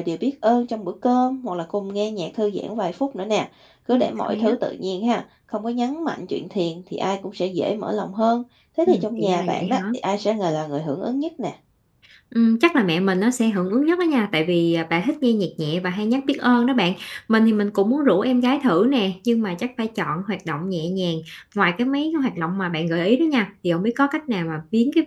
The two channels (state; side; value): identical; both; correlation 1.00